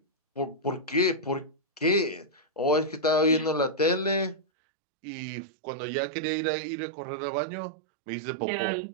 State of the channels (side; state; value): left; drops out; at 4.4 s